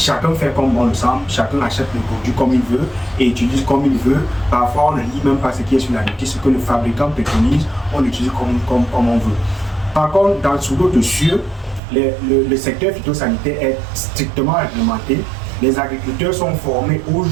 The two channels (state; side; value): drops out; left; at 11.8 s